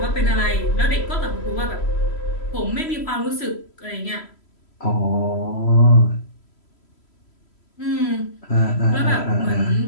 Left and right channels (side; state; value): right; late; 3.0 ms